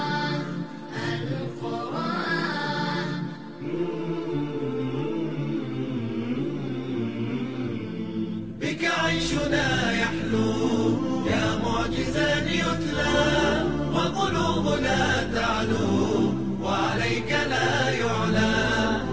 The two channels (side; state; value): both; identical; correlation 1.00